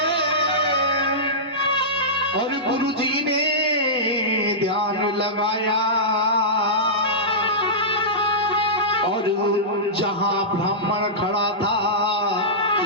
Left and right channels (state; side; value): normal; both; correlation -0.15